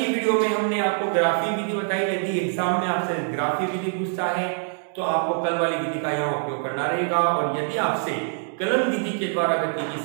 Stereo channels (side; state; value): left; silent; 57 dB below the other